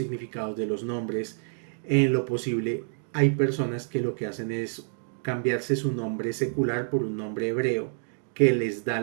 de los nombres. En lo posible, hay personas que lo que hacen es cambiarse su nombre secular por un nombre hebreo que les da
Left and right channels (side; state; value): left; silent; digital silence